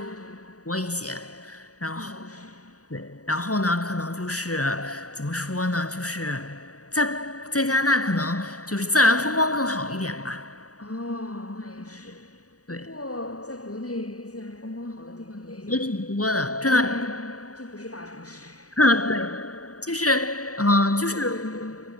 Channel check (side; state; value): right; late; 0.66 ms